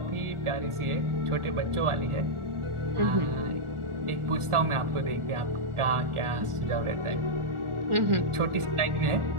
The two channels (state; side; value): late; left; 1.4 ms